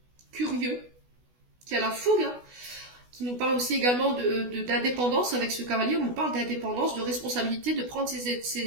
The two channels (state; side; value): late; left; 16 ms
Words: curieux, qui a la fougue, hein, qui nous parle aussi également d'indépendance avec ce cavalier. On nous parle d'indépendance, de responsabilité, de prendre